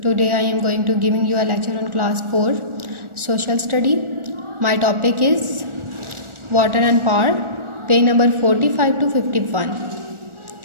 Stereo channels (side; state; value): left; late; 1.4 ms